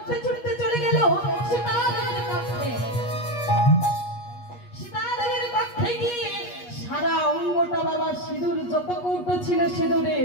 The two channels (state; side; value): late; right; 8.3 ms